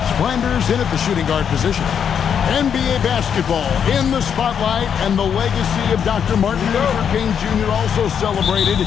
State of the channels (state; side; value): quieter; right; 7.8 dB